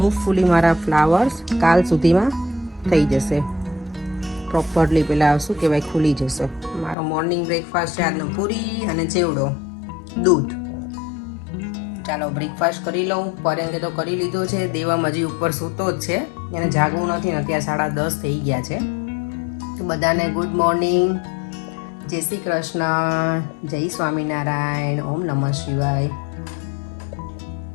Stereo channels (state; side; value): drops out; right; at 7.0 s